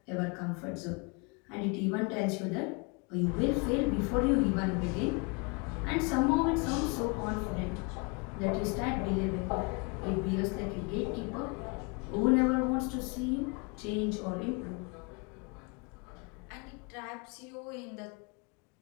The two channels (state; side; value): quieter; right; 31.4 dB